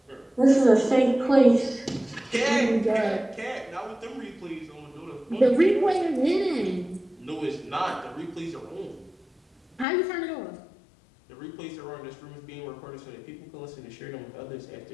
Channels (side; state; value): right; drops out; at 9.9 s